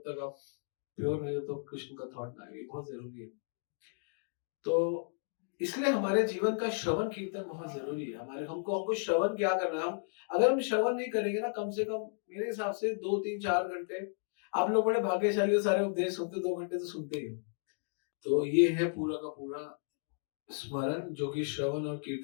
तक आप प्योर नहीं हो तो कृष्ण का थॉट ना आए। बहुत जरूरी है। तो इसलिए हमारे जीवन का श्रवण कीर्तन बहुत जरूरी है। हमको श्रवण क्या करना है? हम अगर हम श्रवण नहीं करेंगे ना, कम से कम मेरे हिसाब से 2 3 4 घंटे, आप लोग बड़े भाग्यशाली हो, सारे उपदेश सुनते 2 घंटे तो सुनते ही हो। तो ये है पूरा का पूरा स्मरण, जो कि श्रवण और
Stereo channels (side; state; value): right; silent; digital silence